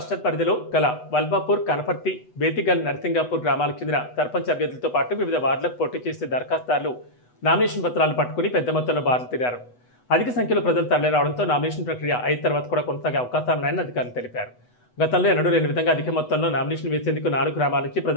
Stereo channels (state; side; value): late; right; 8.1 ms